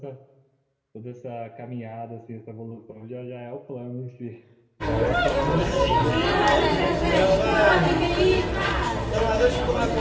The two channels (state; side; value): identical; both; correlation 1.00